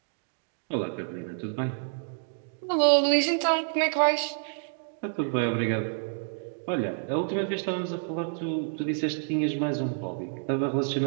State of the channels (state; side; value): silent; left; digital silence